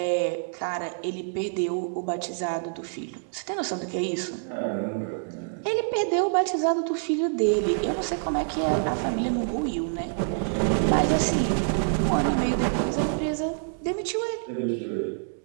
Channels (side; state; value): left; silent; digital silence